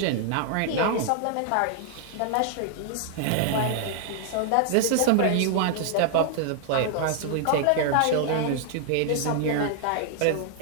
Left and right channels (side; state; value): both; different; correlation 0.00